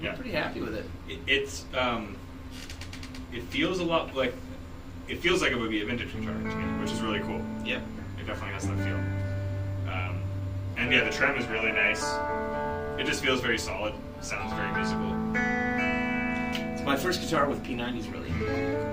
Yeah. I'm pretty happy with it. It feels a lot like, it feels like it would be a vintage guitar to me, which is really cool. Yep. It definitely has that feel. And yeah, the trem is really nice. It just feels very solid. Sounds very musical. It's my first guitar with P90s, really.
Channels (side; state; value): both; identical; correlation 1.00